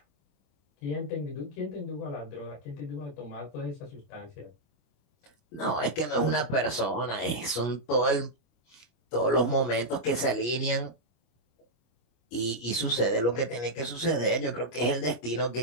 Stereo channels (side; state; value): right; late; 25 ms